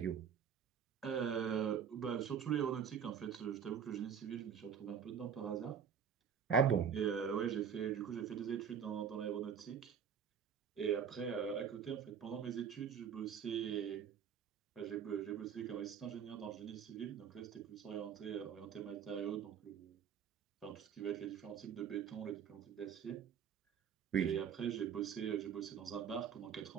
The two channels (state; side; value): quieter; left; 7.5 dB